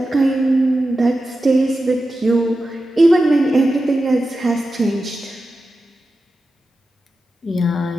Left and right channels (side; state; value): both; normal; correlation 0.92